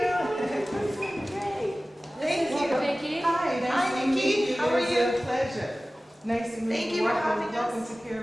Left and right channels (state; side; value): normal; both; correlation 0.97